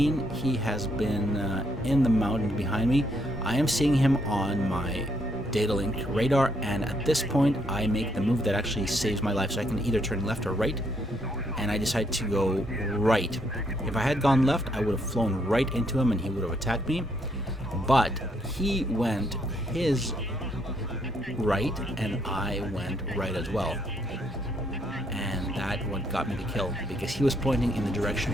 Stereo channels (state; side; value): normal; both; correlation 0.73